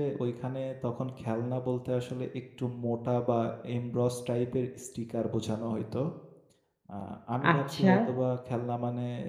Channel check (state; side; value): identical; both; correlation 1.00